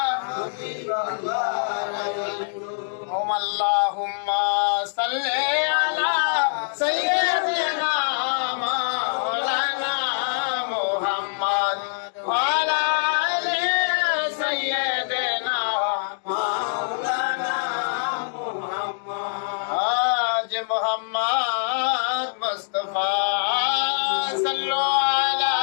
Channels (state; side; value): silent; right; digital silence